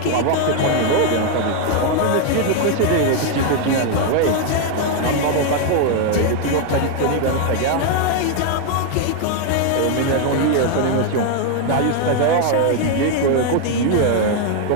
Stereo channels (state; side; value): different; both; correlation 0.01